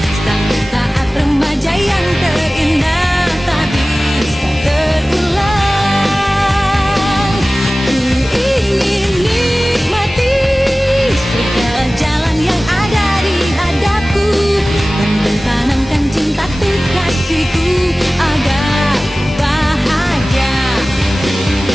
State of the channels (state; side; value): normal; both; correlation 0.97